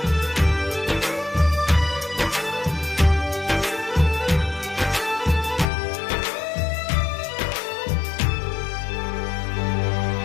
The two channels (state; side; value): drops out; right; at 5.7 s